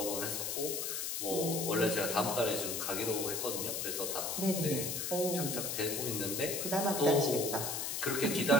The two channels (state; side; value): noise; left; hiss, 2 dB below the sound